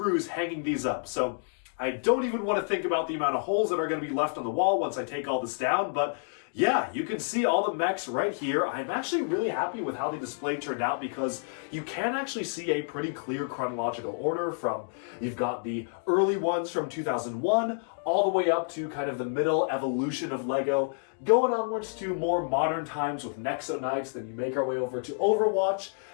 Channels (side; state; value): right; silent; digital silence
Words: hanging these up. So I don't even want to think about the amount of holes that are going to be left on the wall once I take all this down, but yeah, you can see all the mechs right here. I'm actually really happy with how the display turned out because you can actually see a pretty clear chronological order from, you've got the early ones from 2001 all the way up to kind of the middle evolution of LEGO, going onwards to more modern times with Nexo Knights, then you make our way over to Overwatch,